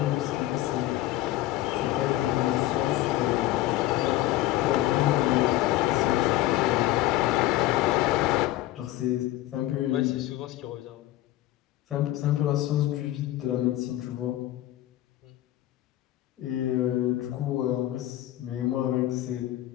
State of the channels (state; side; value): quieter; right; 15.4 dB